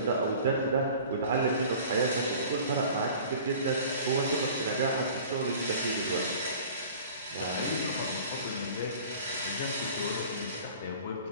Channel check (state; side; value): inverted; both; correlation -0.44